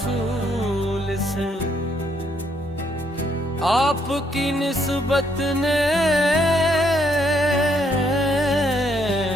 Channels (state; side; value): normal; both; correlation 0.71